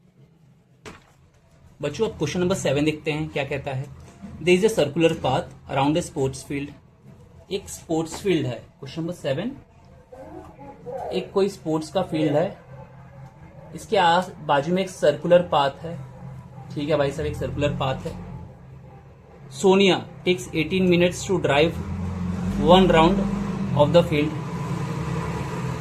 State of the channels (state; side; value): identical; both; correlation 1.00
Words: बच्चों अब क्वेश्चन नंबर 7 देखते हैं क्या कहता है। There is a circular path around a sports field. एक sports field है, question number 7। एक कोई स्पोर्ट्स का फील्ड है, इसके आस बाजू में एक सर्कुलर पाथ है। ठीक है भाई साहब, एक सर्कुलर पाथ है। Sonia takes 18 minutes to drive one round of the field.